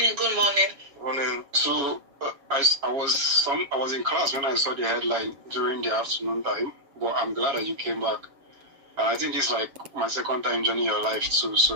good morning. Morning. So, I was in class when I saw the headline during the afternoon time, but I'm glad that you came back. And I think this is like my second time joining your life too. So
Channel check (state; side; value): late; left; 7.2 ms